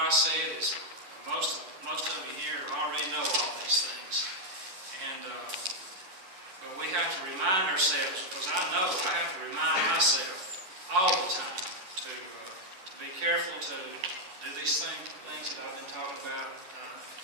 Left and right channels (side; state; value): left; late; 10 ms